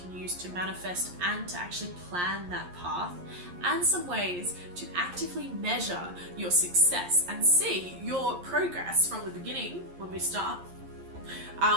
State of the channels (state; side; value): late; left; 11 ms